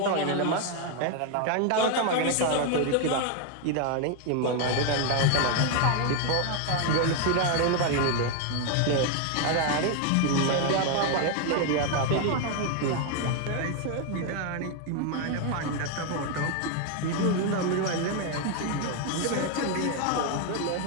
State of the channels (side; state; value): both; different; correlation 0.00